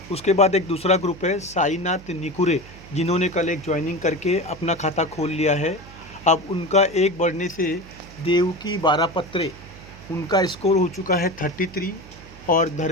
उसके बाद एक दूसरा ग्रुप है साईनाथ निकुरे, जिन्होंने कल एक ज्वाइनिंग करके अपना खाता खोल लिया है। अब उनका एक बढ़ने से देवकी बारापत्रे, उनका स्कोर हो चुका है 33। और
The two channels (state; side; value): noise; right; hum, 19 dB below the sound